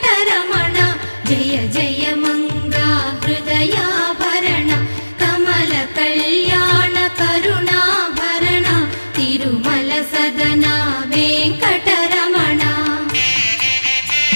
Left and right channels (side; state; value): both; inverted; correlation -1.00